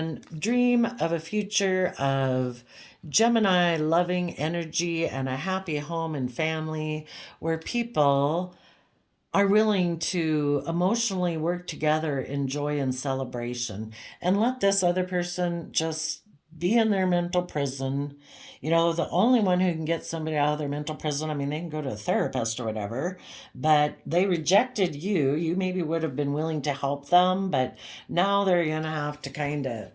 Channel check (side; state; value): both; identical; correlation 1.00